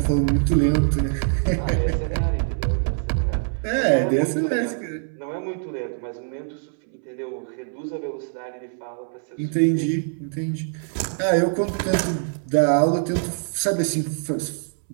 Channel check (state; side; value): silent; left; 63 dB below the other